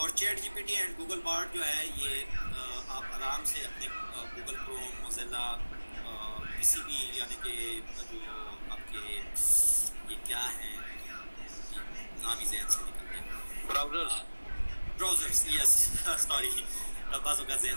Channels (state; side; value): inverted; both; correlation -1.00